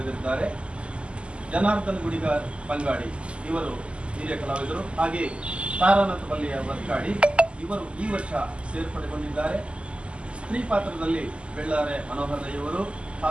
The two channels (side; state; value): left; late; 0.054 ms